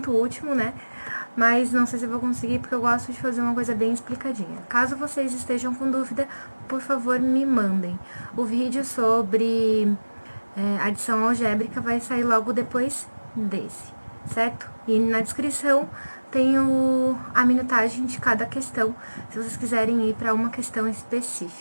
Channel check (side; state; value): both; inverted; correlation -1.00